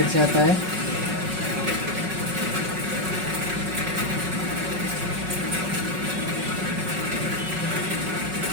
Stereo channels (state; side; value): late; left; 5.4 ms